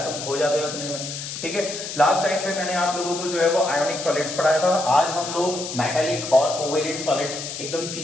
खो जाते हो उतने में। ठीक है, लास्ट टाइम पे मैंने आप लोगों को जो है वो आयोनिक सॉलिड्स पढ़ाया था। आज हम लोग मेटालिक और कोवेलेंट सॉलिड्स एकदम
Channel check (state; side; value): noise; left; hiss, 7 dB below the sound